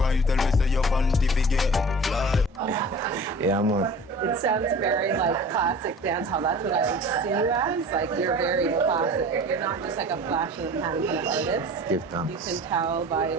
tell me say your panty fi get fly. Yeah man. It sounds very like classic dancehall. That's what I would see you as. Like you're very classic. You're not just like a flash in the pan kind of artist. Give thanks. You can tell by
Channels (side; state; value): both; normal; correlation 0.41